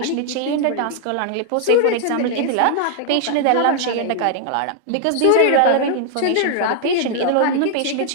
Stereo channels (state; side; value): different; both; correlation 0.00